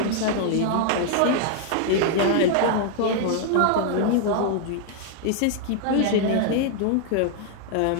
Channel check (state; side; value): different; both; correlation 0.00